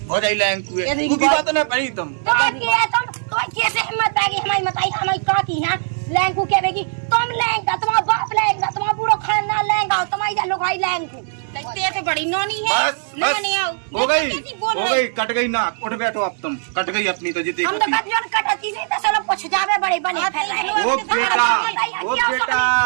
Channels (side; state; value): left; silent; digital silence